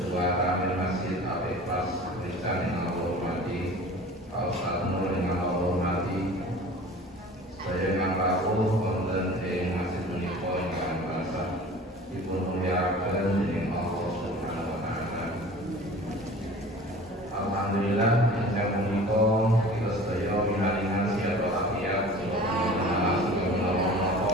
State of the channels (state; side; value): normal; both; correlation 0.42